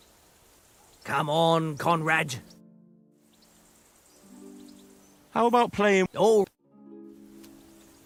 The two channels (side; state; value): both; identical; correlation 1.00